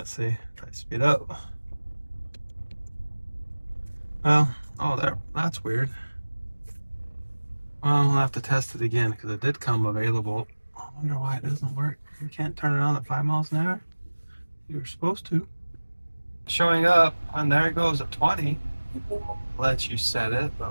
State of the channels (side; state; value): both; inverted; correlation -1.00